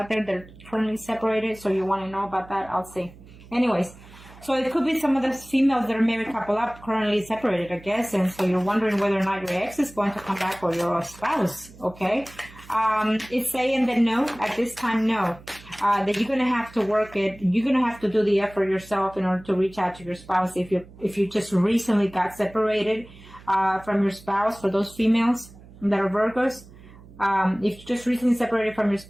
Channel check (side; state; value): right; noise; hum, 21 dB below the sound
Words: there that are currently separated. So you want to know about that? I'll see. Anyways, so it could be some of the females that are married couple up currently separated, I guess. And so you're wondering whether or not your ex is going to come back, or your spouse. Okay. It's saying that no, at this time, no. That you're going to have to work it. You're going to have to do the effort yourself in order to reach out to your spouse. If you just recently got separated from your spouse, for those females that are Virgos, if you just recently separated from your